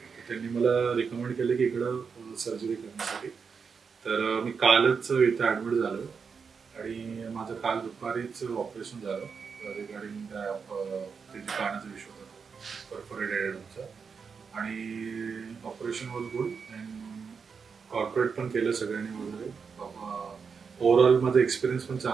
त्यांनी मला रिकमेंड केलं की इकडं सर्जरी करण्यासाठी. तर मी कालच इथं ॲडमिट झालो आणि माझं काल दुपारीच ऑपरेशन झालं रिगार्डिंग ते जे कानाचा विषय होता परफोरेटेड एअरड्रमचा. आणि operation was good and corporate पण केलं सगळ्यांनी वगैरे. ओव्हरऑल माझा एक्सपिरियन्स पण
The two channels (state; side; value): quieter; left; 5.8 dB